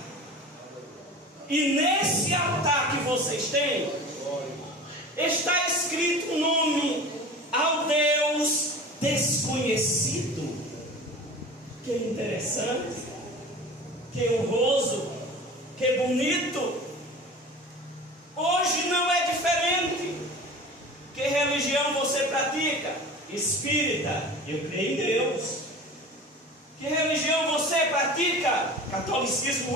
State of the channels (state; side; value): normal; both; correlation 0.37